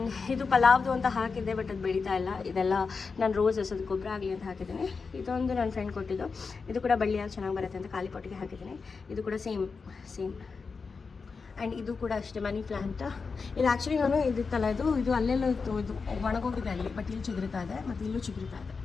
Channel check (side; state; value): right; quieter; 4.8 dB